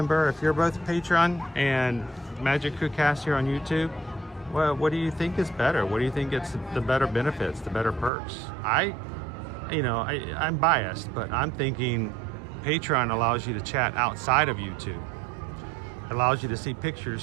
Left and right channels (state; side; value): drops out; left; at 8.1 s